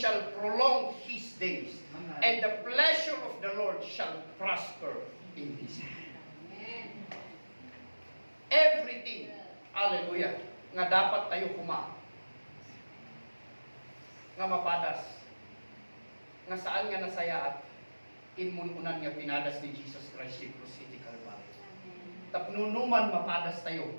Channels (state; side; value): inverted; both; correlation -1.00